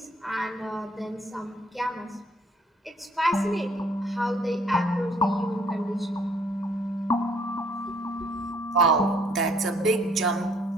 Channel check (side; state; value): both; normal; correlation 0.62